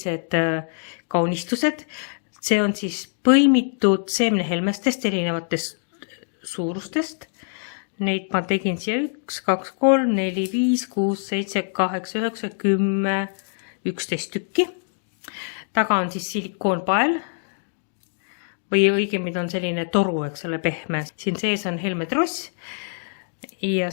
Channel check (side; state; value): right; silent; digital silence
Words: kaunistused. See on siis põimitud seemnehelmestest erinevatest suurustest. Neid ma tegin siia 1, 2, 3, 4, 5, 6, 7, 8, 9, 10, 11 tükki. Taga on siis silikoonpael või õigemini on selline toru, eks ole, pehme. Siin sees on helmetross. Ja